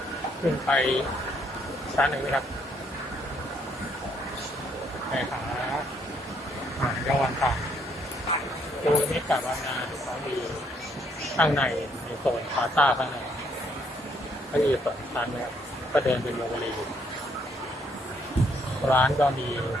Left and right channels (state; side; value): normal; both; correlation 0.69